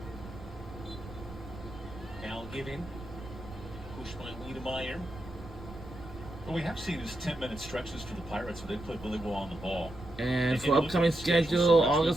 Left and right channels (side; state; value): right; noise; rumble, 14 dB below the sound